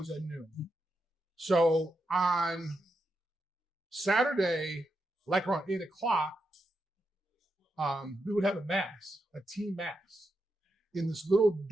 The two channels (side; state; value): both; normal; correlation 0.85